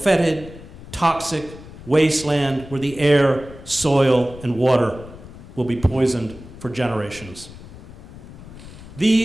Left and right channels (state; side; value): noise; left; rumble, 16 dB below the sound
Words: toxic wasteland where the air, soil, and water will be poisoned for generations.